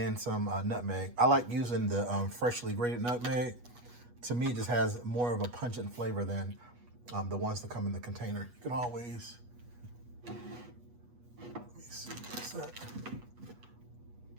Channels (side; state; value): left; late; 8.3 ms